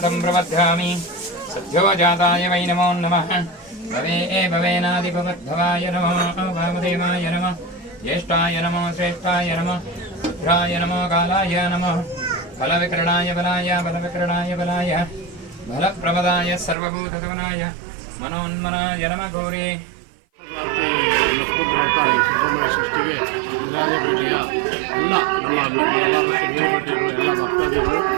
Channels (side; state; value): left; drops out; at 16.8 s